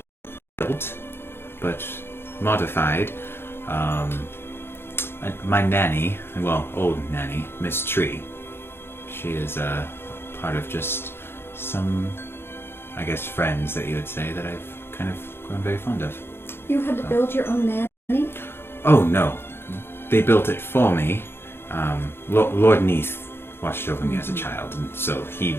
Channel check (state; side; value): late; right; 0.11 ms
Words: built, but modified. My nanny, well, old nanny, Miss Tree. She is part of just some, I guess, friends that you would say that I've kind of grown very fond of. You had to build your own nanny? Oh no, they built it for me. Lord Neath watched over me as a child, and so he